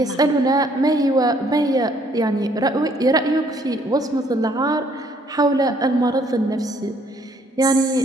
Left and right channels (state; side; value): normal; both; correlation 0.64